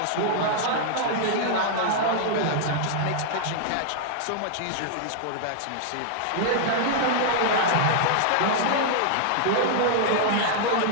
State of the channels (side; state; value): both; different; correlation -0.01